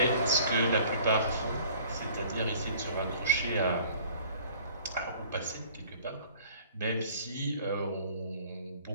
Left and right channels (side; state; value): both; inverted; correlation -0.52